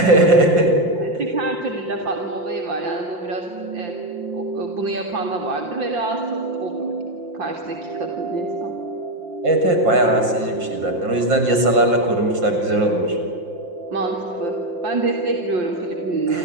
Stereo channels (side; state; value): left; late; 5.7 ms